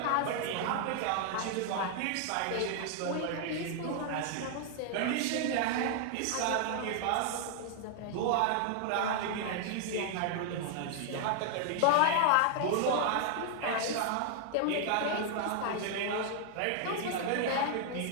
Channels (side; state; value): both; different; correlation 0.00